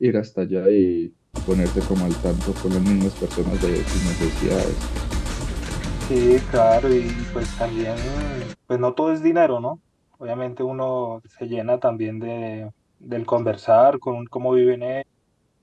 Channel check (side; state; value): both; identical; correlation 1.00